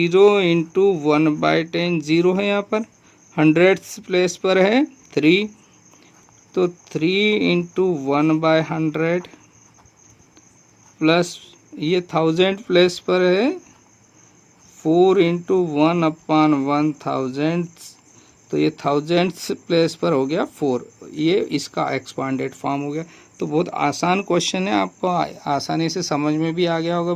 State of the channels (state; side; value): identical; both; correlation 1.00